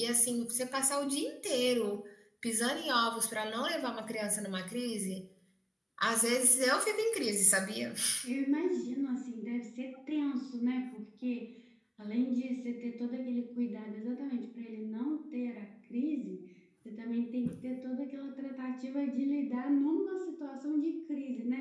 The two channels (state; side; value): identical; both; correlation 1.00